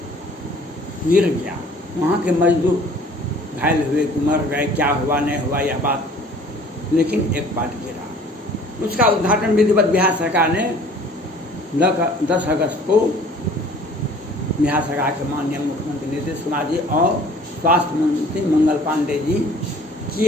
गिर गया। वहाँ के मजदूर घायल हुए कि मर गए, क्या हुआ नहीं हुआ यह बात, लेकिन एक पार्ट गिरा। उसका उद्घाटन विधिवत बिहार सरकार ने 10 अगस्त को बिहार सरकार के माननीय मुख्यमंत्री नीतीश कुमार जी और स्वास्थ्य मंत्री मंगल पांडे जी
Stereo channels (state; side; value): normal; both; correlation 0.51